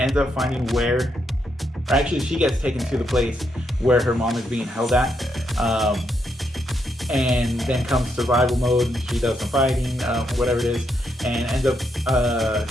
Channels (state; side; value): normal; both; correlation 0.79